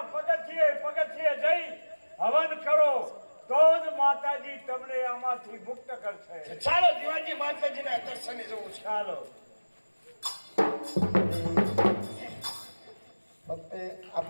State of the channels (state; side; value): inverted; both; correlation -1.00